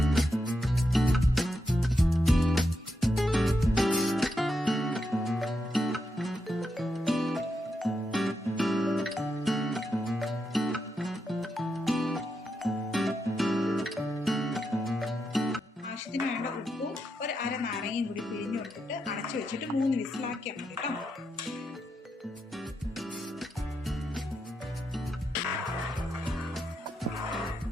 ആവശ്യത്തിന് വേണ്ട ഉപ്പും ഒരു അര നാരങ്ങയും കൂടി പിഴിഞ്ഞു കൊടുത്തിട്ട് അടച്ചു വെച്ചിട്ട് 3 വിസിലാക്കിയാൽ മതി കേട്ടോ.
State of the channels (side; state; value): both; normal; correlation 0.84